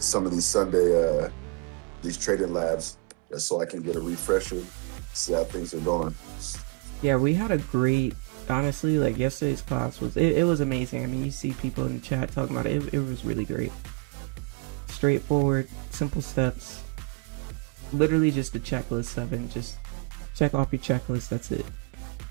Sunday these trading labs just so I can get a refresher, see how things are going. Yeah, we had a great, honestly, like yesterday's class it was amazing. I mean, you see people in the chat talking about it. It was really great. Straightforward, simple steps. Literally just a checklist, 7. Just check off your checklist. That's it.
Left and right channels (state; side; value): quieter; left; 30.7 dB